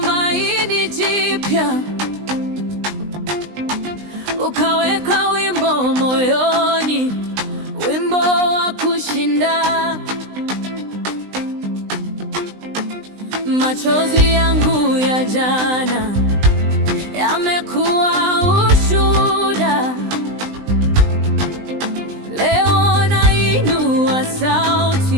jipya, ukaweka wimbo moyoni, wimbo wa kushinda. Machozi yangu ya jana yamekuwa ushuhuda. Leo nainua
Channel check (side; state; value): left; late; 20 ms